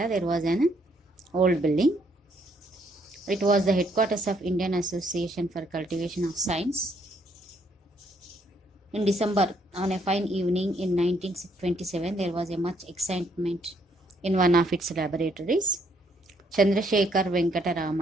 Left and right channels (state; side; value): normal; both; correlation 0.70